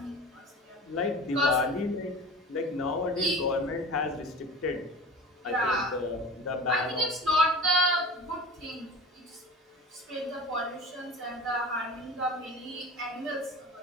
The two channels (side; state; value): both; normal; correlation 0.36